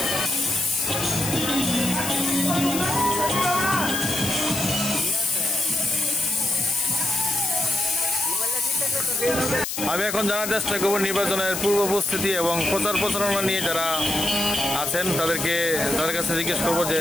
আমি এখন জানার চেষ্টা করবো নির্বাচনের পূর্ব প্রস্তুতি এবং প্রচার প্রচারণা নিয়ে যারা আছেন তাদের কাছে জিজ্ঞেস করবো যে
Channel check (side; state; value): left; noise; hiss, 4 dB below the sound